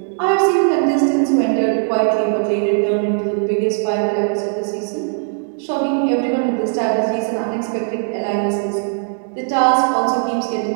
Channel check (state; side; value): silent; left; digital silence